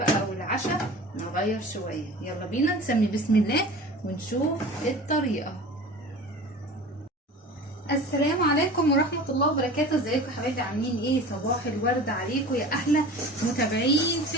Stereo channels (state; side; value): normal; both; correlation 0.38